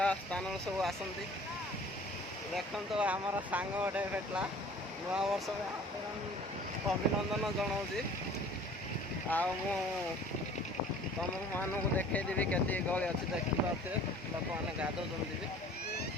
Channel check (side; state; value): both; normal; correlation 0.49